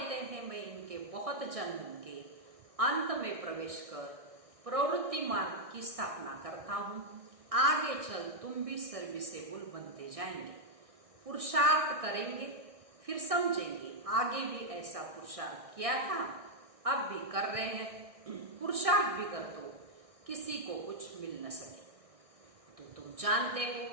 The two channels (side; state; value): left; late; 1.6 ms